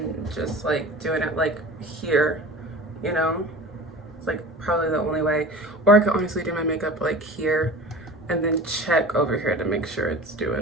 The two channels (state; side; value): normal; both; correlation 0.37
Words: just like doing it like here, you know? It's like probably the only way. Or I could honestly do my makeup like here and then check over here to make sure it's